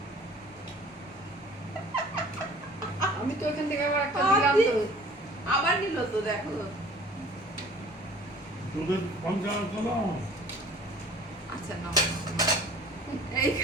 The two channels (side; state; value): both; normal; correlation 0.49